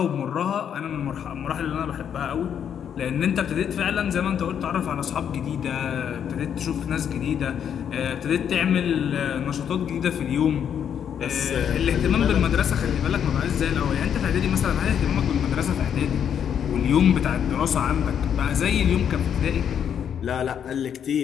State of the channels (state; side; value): quieter; right; 8.5 dB